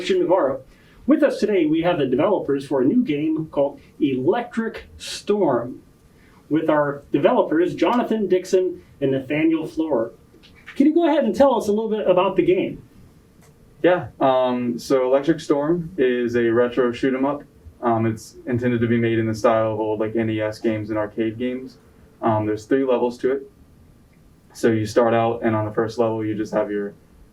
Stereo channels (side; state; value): both; identical; correlation 1.00